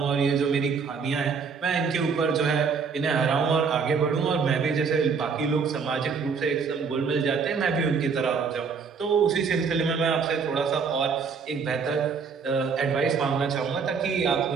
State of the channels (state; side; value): quieter; left; 5.6 dB